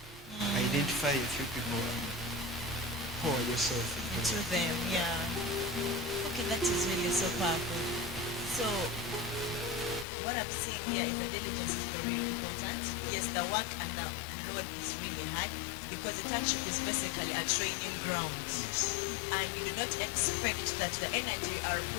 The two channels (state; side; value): drops out; right; at 10.1 s